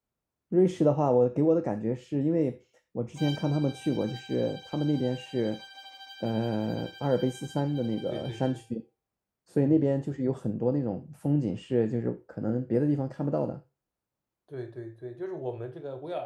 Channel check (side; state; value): both; identical; correlation 1.00